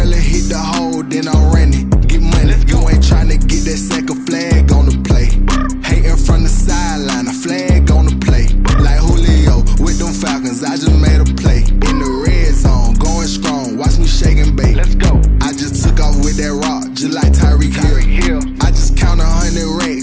and hit the hole, then I'm running. Get money, you ain't tryna get that second flag on the play. Hating from the sideline, a flag on the play. Like Julio with them Falcons, I just made a play. In the red zone, going strong, watch me shake and bake. Let's go. I just took off with that rock, just like Tyreek Hill. I just count 100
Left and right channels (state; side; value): identical; both; correlation 1.00